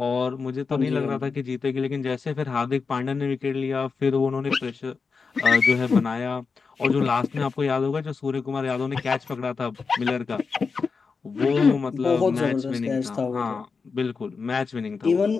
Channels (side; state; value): right; quieter; 5.0 dB